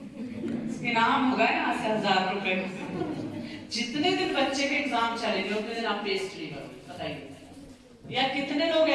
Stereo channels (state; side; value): identical; both; correlation 1.00